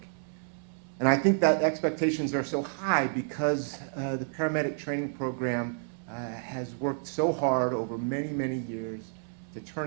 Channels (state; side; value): silent; left; 58 dB below the other